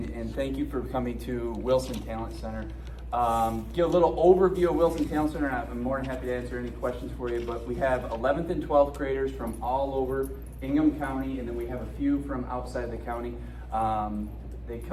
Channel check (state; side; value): identical; both; correlation 1.00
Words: thank you for coming to Wilson Talent Center. Give a little overview of Wilson Talent Center, and I'm more than happy to answer any questions for you, but we have 11th and 12th graders from all over Ingham County, and then we have a few from outside the county. They